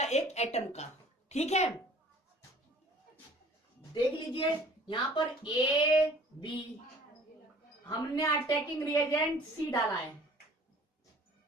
एक एटम का, ठीक है। देख लीजिए यहाँ पर ए बी, हमने अटैकिंग रिएजेंट सी डाला है,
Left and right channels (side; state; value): both; normal; correlation 0.51